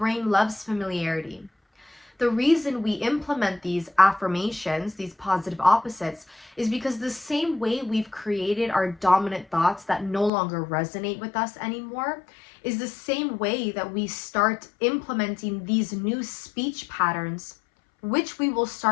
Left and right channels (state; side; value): drops out; right; at 10.3 s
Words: loves familiarity. The reason we implement these affirmations, these positive opposites, is because the same way we've created our dominant thoughts that no longer resonate with us anymore is the same way that we start implementing these new speech patterns, which we will